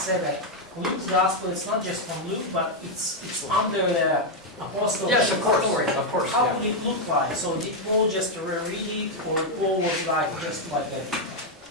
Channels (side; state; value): both; normal; correlation 0.01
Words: that Luke's gospel is not just from Luke, but it's under the apostle. Yes, of course. authority. Of course. How Yeah. would it look like? So did Paul just read it, or Paul was like just like a,